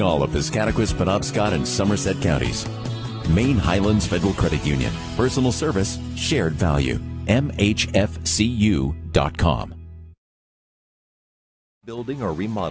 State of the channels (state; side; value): identical; both; correlation 1.00